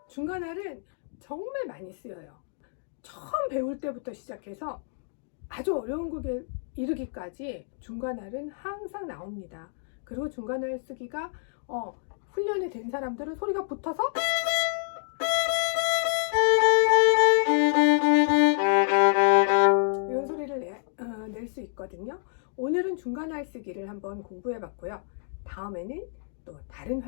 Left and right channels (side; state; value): right; silent; digital silence